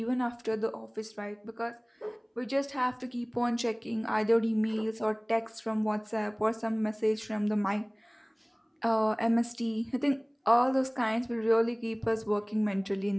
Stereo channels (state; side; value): identical; both; correlation 1.00